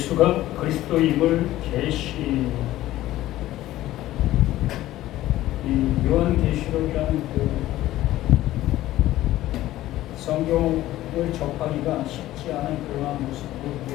그리스도임을 계시 이 요한계시록이라는 그 성경을 접하기가 쉽지 않은 그러한 모습으로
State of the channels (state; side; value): quieter; right; 15.1 dB